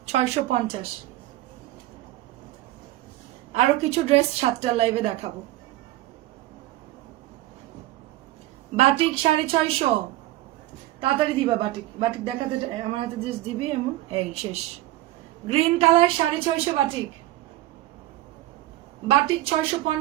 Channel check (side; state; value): left; quieter; 16.4 dB